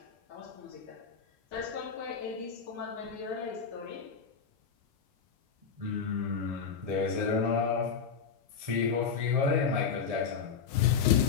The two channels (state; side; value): quieter; right; 6.3 dB